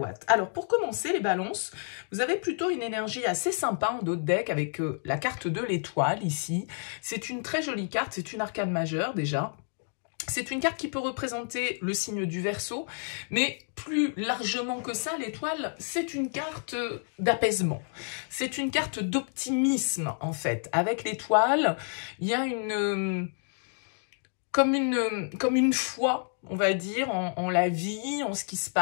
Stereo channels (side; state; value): right; silent; 58 dB below the other